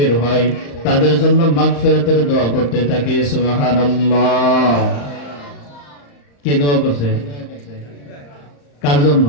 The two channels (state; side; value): late; right; 35 ms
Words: হয় তাদের জন্য মাগফিরাতের দোয়া করতে থাকে। সুবহানাল্লাহ। কে দোয়া করছে? কার জন্য?